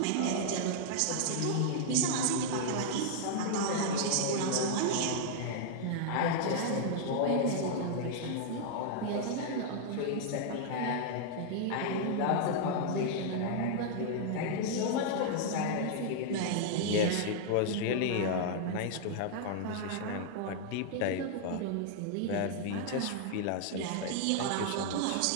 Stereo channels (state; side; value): different; both; correlation -0.01